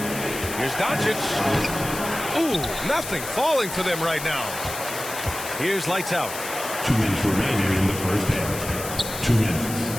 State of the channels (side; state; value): left; noise; hiss, 9 dB below the sound